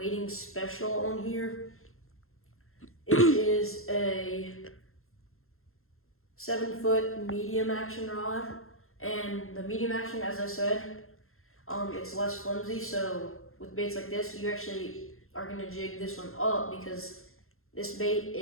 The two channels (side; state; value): right; late; 0.61 ms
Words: Special on here. It is a 7-foot medium action rod, and the medium action, as I said, it's less flimsy. So with baits like this, you actually are gonna jig this one up because this